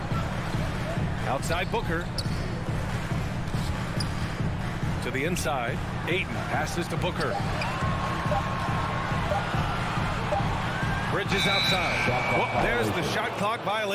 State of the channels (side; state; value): both; identical; correlation 1.00